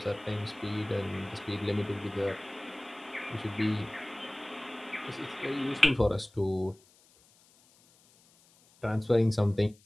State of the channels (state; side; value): noise; left; hiss, 29 dB below the sound